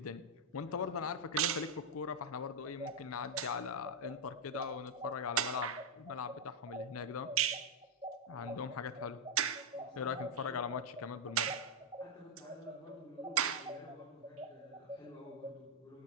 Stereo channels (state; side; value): normal; both; correlation -0.02